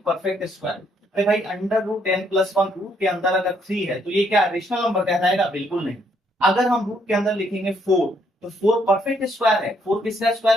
परफेक्ट स्क्वायर। अरे भाई under root n plus one root के अंदर अगर 3 है तो ये क्या रेशनल नंबर कहलाएगा, बिल्कुल नहीं। अगर हम रूट के अंदर लिखेंगे 4 तो 4 परफेक्ट स्क्वायर है। 4 किसका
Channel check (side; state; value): both; normal; correlation 0.70